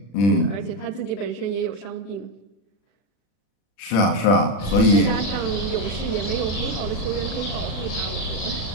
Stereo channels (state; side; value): late; right; 40 ms